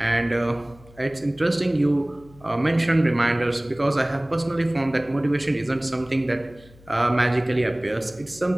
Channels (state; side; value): noise; left; hum, 24 dB below the sound